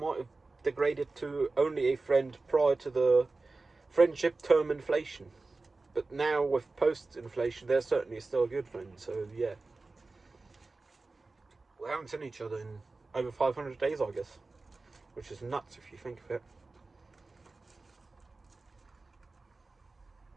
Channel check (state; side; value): quieter; left; 3.5 dB